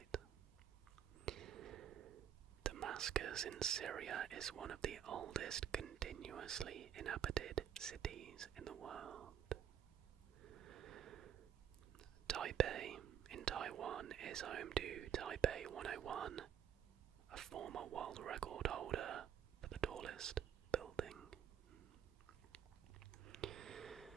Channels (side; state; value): left; quieter; 9.4 dB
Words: Damascus in Syria is one of the oldest continuously inhabited cities in the world. Taipei in Taiwan is home to Taipei 101, a former world record holder for the tallest building.